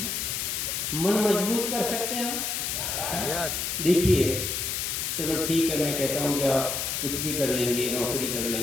मन मजबूत कर सकते हैं हम? देखिए, चलो ठीक है, मैं कहता हूँ कि आप कुछ भी कर लेंगे, नौकरी कर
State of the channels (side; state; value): left; noise; hiss, 1 dB below the sound